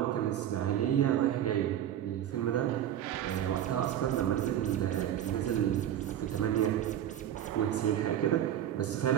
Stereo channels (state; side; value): quieter; left; 11.0 dB